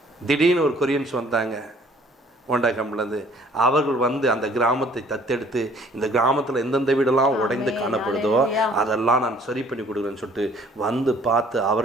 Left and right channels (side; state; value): both; normal; correlation 0.56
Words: திடீர்னு ஒரு கொரியன்ஸ் வந்தாங்க ஹோண்டா கம்பெனிலேருந்து. அவர்கள் வந்து அந்த கிராமத்தை தத்தெடுத்து, இந்த கிராமத்தில் எந்தெந்த வீடெல்லாம் உடைந்து காணப்படுதோ அதெல்லாம் நான் சரி பண்ணி கொடுக்குறேன்னு சொல்லிட்டு வந்து பார்த்து,